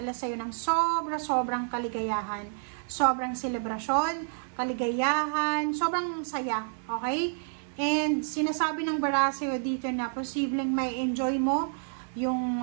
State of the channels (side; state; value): left; silent; 56 dB below the other